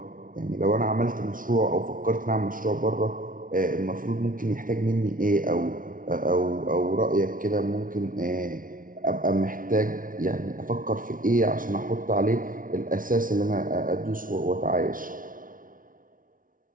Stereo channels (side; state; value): left; late; 0.39 ms